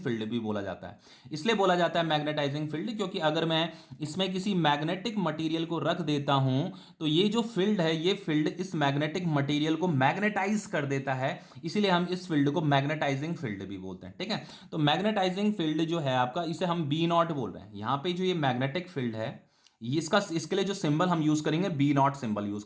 भी बोला जाता है। इसलिए बोला जाता है मैग्नेटाइजिंग फील्ड क्योंकि अगर मैं इसमें किसी मैग्नेटिक मटीरियल को रख देता हूं तो ये जो फील्ड है ये फील्ड इस मैग्नेटिक मटीरियल को मैग्नेटाइज कर देता है, इसीलिए हम इस फील्ड को मैग्नेटाइजिंग फील्ड भी बोलते हैं। ठीक है, तो मैग्नेटाइजिंग फील्ड जो है आपका, इसे हम बी नॉट बोल रहे हैं। यहां पे जो ये मैग्नेटिक फील्ड है इसके लिए जो सिंबल हम यूज करेंगे बी नॉट सिंबल यूज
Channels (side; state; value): both; identical; correlation 1.00